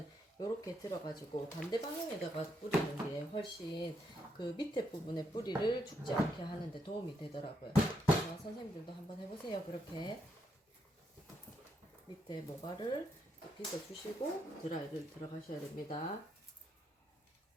이렇게 들어가지고 반대 방향에다가 뿌리는 게 훨씬 그 밑에 부분에 뿌리를 죽지 않게 하는데 도움이 되더라고요. 선생님들도 한번 해보세요. 그렇게 밑에 모발을 빗어주시고 드라이를 들어가셔야 됩니다.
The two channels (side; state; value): both; normal; correlation 0.78